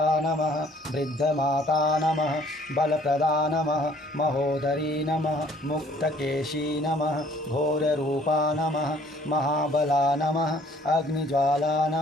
नमः, वृद्धमाता नमः, बलप्रदा नमः, महोदरी नमः, मुक्तकेशी नमः, घोररूपा नमः, महाबला नमः, अग्निज्वाला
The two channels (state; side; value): normal; both; correlation 0.58